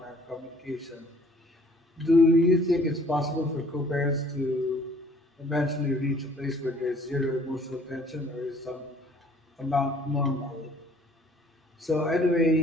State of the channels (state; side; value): normal; both; correlation 0.57